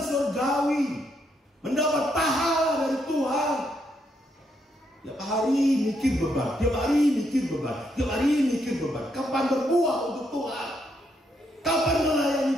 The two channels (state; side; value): normal; both; correlation 0.77